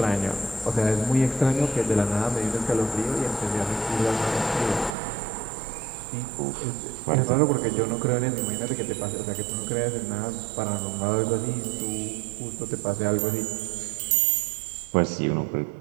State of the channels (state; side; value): drops out; left; at 4.9 s